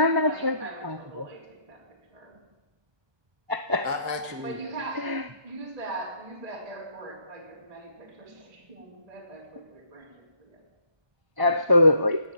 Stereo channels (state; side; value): late; left; 1.2 ms